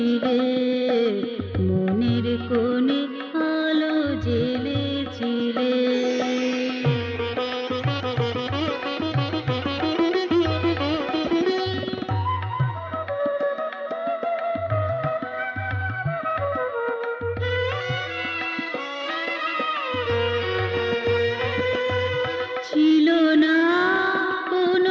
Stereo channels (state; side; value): identical; both; correlation 1.00